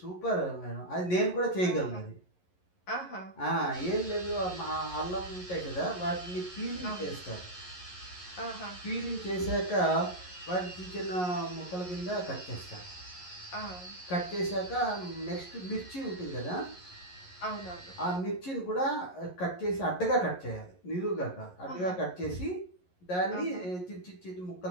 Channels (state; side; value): late; right; 11 ms